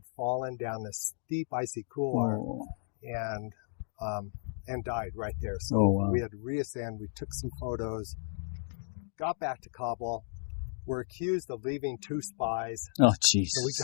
fallen down this steep icy couloir and died right there. So we had to reascend. We took some photos, got back to Kabul. We're accused of leaving 2 spies. Oh, jeez. So we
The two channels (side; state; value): right; silent; digital silence